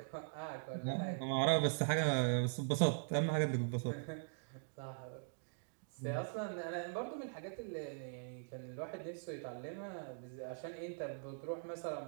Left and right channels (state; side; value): silent; left; digital silence